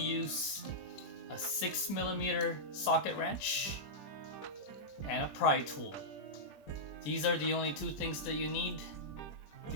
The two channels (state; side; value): late; right; 20 ms